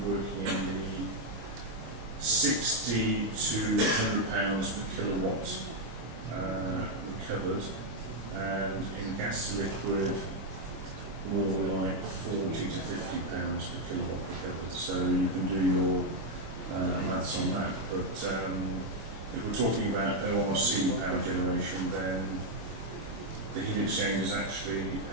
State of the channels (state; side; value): late; left; 25 ms